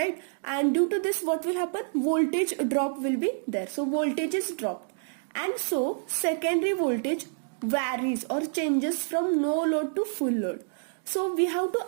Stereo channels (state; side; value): silent; left; digital silence